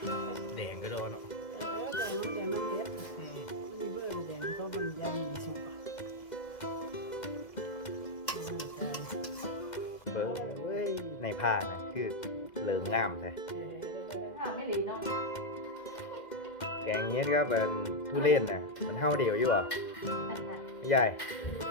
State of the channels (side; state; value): right; late; 2.1 ms